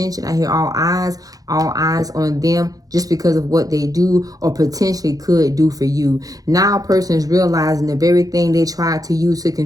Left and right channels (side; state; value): left; late; 0.17 ms